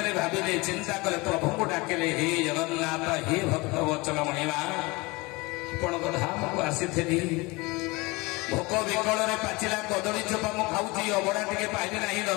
ଭାବିଲେ ଚିନ୍ତା କଲେ ପ୍ରଭୁଙ୍କୁ ଡାକିଲେ ହେ ଜଗନ୍ନାଥ ହେ ଭକ୍ତ ବଚନ ମଣିମା ଆପଣଙ୍କ ଧାମକୁ ଆସିଥିଲି। ଭୋକ ବିକଳରେ ପାଚିଲା କଦଳୀ ଚୋପା ମୁଁ ଖାଉଛି ଅବଢା ଟିକେ ପାଇଲି ନାହିଁ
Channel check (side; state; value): right; quieter; 24.3 dB